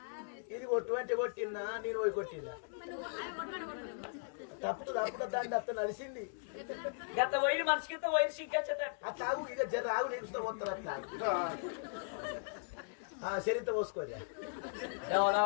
ఇది కొట్టు కొట్టినా నేను పోయి కొట్టినా తప్పుడు దాన్ని అత్త నడిచింది. గత పోయి మనిషికి పోయి సిగ్గచ్చట తాగు ఇక జర ఆగు నేర్చుతో పోతారు అట్లా చరిత్ర పోసుకోరా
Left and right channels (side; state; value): right; silent; digital silence